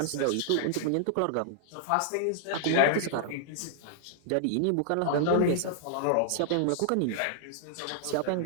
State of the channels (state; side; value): different; both; correlation -0.01